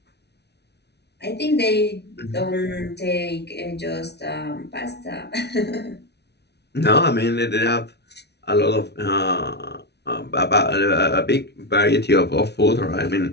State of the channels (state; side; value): late; right; 0.49 ms